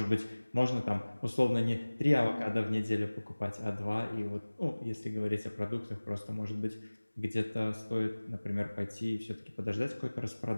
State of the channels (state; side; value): inverted; both; correlation -1.00